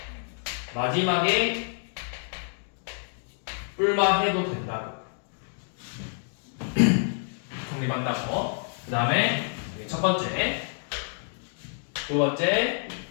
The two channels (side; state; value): right; silent; digital silence